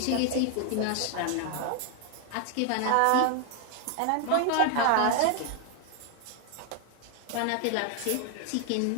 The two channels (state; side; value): different; both; correlation 0.00